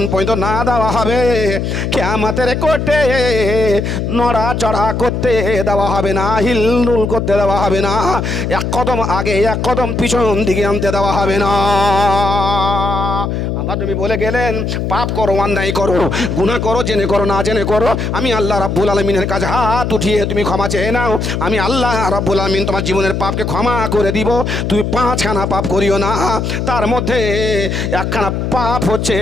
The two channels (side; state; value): left; noise; hum, 1 dB below the sound